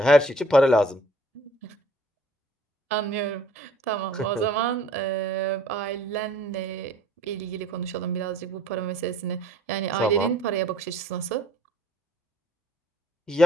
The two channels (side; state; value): both; normal; correlation 0.55